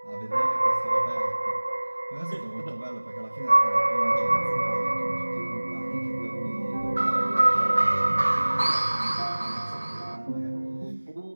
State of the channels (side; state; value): both; inverted; correlation -1.00